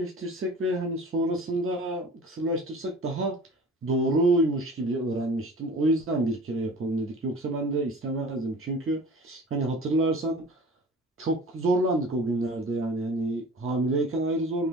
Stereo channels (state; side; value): normal; both; correlation 0.42